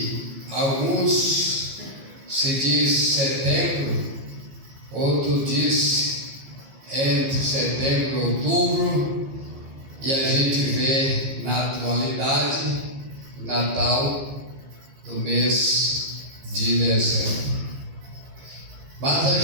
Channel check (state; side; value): late; left; 15 ms